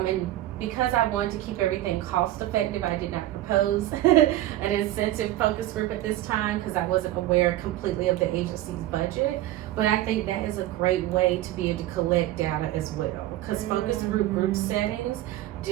because I wanted to keep everything cost effective, I did not propose an incentive focus group at this time because I wasn't aware completely of the agency's budget. But I think that is a great way to be able to collect data as well, because focus group settings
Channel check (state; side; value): quieter; left; 14.8 dB